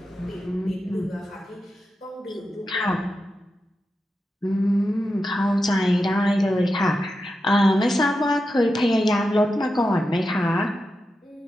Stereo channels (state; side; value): normal; both; correlation 0.90